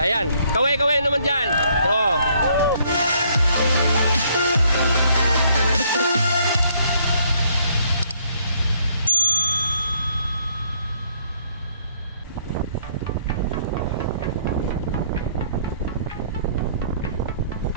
Kaway-kaway naman dyan. Oo.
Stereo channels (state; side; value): inverted; both; correlation -0.66